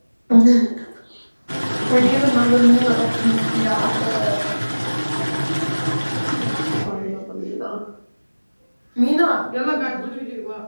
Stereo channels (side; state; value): both; inverted; correlation -1.00